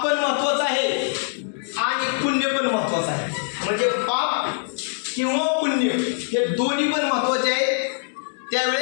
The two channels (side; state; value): right; silent; 63 dB below the other